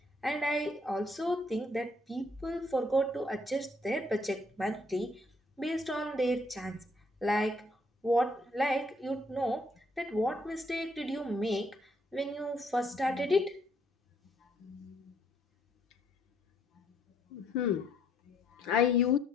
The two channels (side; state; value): both; normal; correlation 0.69